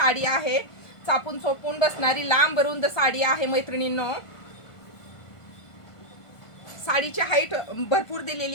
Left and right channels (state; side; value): late; right; 1.5 ms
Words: आहे. चापून चोपून बसणारी लांब रुंद साडी आहे मैत्रिणींनो. साडीची हाईट भरपूर